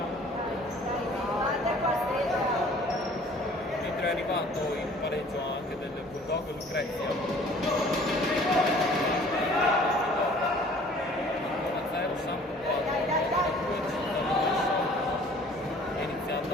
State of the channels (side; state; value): both; normal; correlation 0.52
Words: mentre è arrivato il pareggio anche del Bulldog Lucrezia 1-0, Samp 4, è